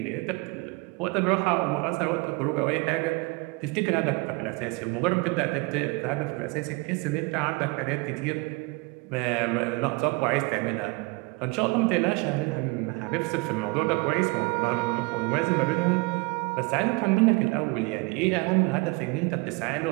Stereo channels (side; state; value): left; quieter; 26.1 dB